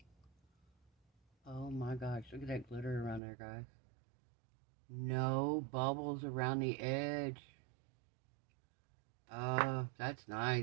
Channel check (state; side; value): drops out; left; at 3.2 s